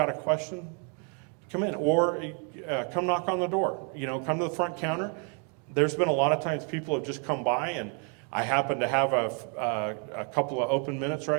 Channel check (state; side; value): quieter; left; 38.7 dB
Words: a question, come in or come knock on the door. Come to the front counter. There's been a lot of times people have just come by and I happen to have a couple of open minutes